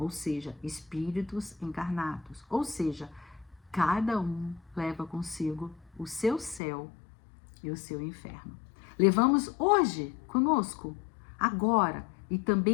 seja, espíritos encarnados. Ou seja, cada um leva consigo o seu céu e o seu inferno. Levamos hoje conosco, agora, e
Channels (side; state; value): right; drops out; at 6.6 s